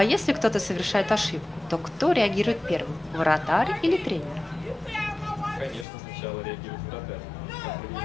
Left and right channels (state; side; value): drops out; right; at 5.9 s